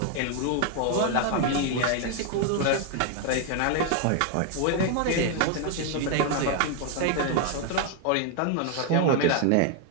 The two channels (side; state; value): both; different; correlation 0.00